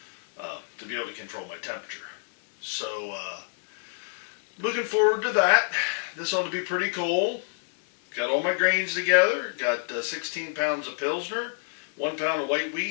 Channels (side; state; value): right; silent; digital silence